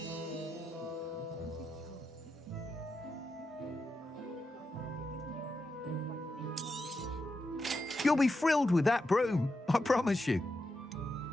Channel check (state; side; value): normal; both; correlation 0.87